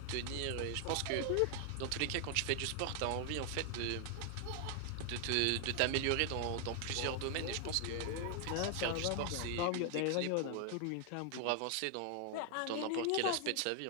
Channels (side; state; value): both; different; correlation 0.00